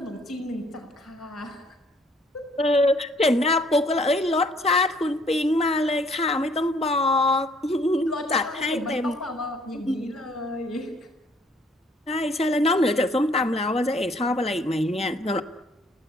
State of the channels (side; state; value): both; normal; correlation 0.62